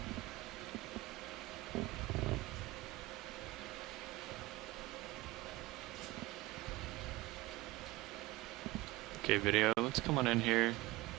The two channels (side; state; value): left; quieter; 19.6 dB